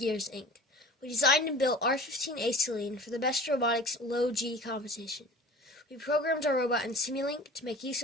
Inc. We designed and built R15 Acetylene for the Best Robotics Low G competition. We programmed our robot in Simulink to make use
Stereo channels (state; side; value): normal; both; correlation 0.41